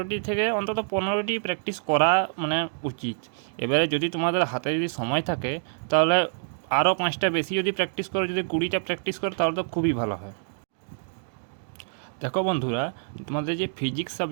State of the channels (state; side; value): silent; left; digital silence